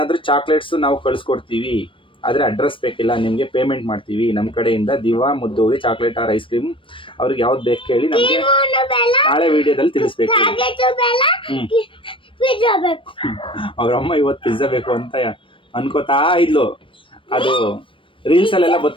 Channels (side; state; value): right; late; 0.25 ms